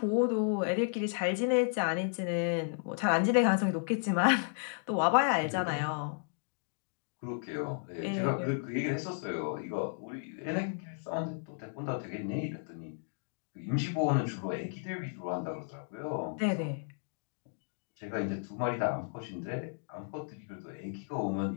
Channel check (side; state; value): right; silent; digital silence